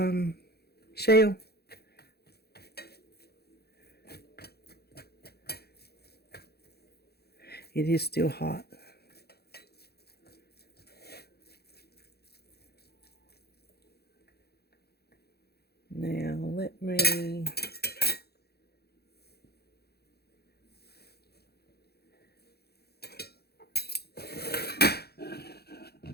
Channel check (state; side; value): late; right; 0.46 ms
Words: shell? It is still hot. Now let me